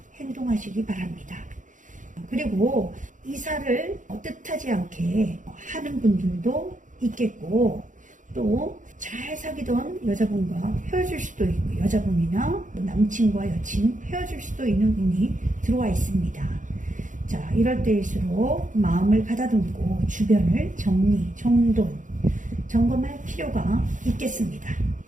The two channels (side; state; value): left; late; 0.37 ms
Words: 행동하시기 바랍니다. 그리고 이사를 뜻하지 않게 하는 분들도 있겠고, 또 잘 사귀던 여자분과 헤어질 수도 있고, 여자분이나 남친과 여친 헤어질 수도 있는 운이 들어와 있습니다. 자, 이럴 때일수록 마음을 가다듬고 주변을 정리, 정돈, 점검할 필요가 있겠습니다.